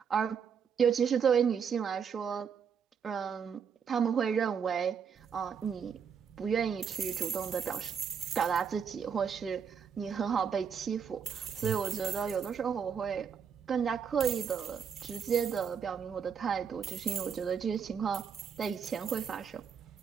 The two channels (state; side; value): quieter; left; 6.9 dB